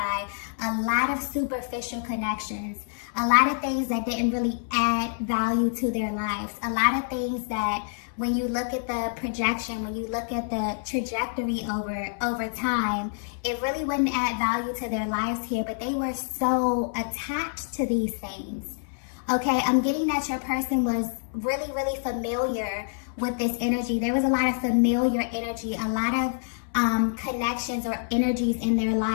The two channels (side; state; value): right; silent; 60 dB below the other